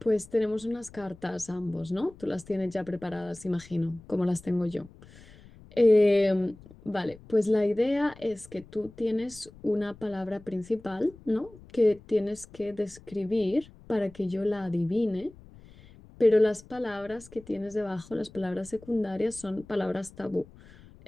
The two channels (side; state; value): left; noise; rumble, 22 dB below the sound